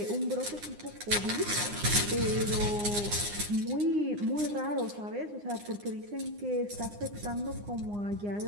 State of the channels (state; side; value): late; left; 9.8 ms